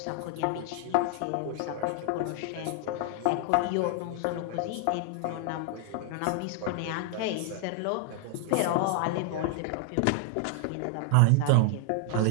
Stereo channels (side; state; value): both; different; correlation 0.00